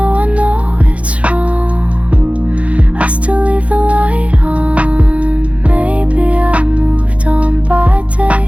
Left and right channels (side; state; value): left; late; 0.064 ms